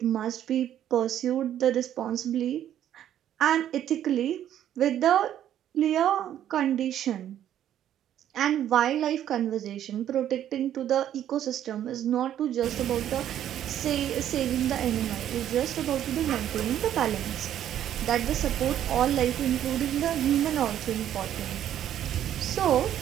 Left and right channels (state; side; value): quieter; left; 10.9 dB